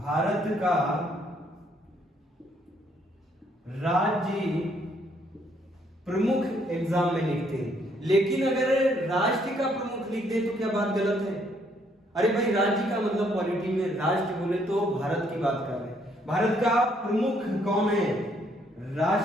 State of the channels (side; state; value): both; normal; correlation 0.69